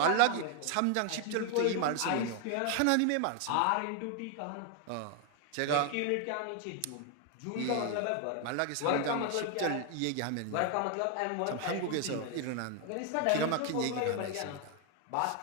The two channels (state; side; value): different; both; correlation 0.00